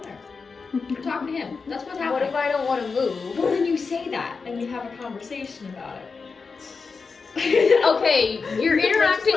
We're talking to him. That's what's What happening. if I don't want to move? Well, then you say that, and we have a conversation about it. Okay, you're Just interacting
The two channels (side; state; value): right; quieter; 4.8 dB